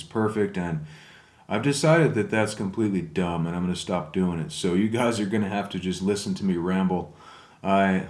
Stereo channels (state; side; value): identical; both; correlation 1.00